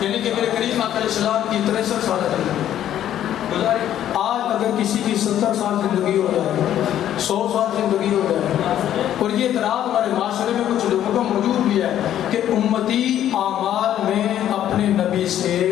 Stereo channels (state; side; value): quieter; right; 11.3 dB